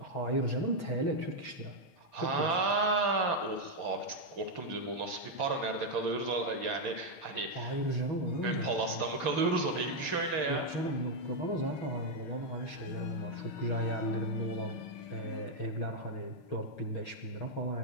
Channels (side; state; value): right; late; 6.8 ms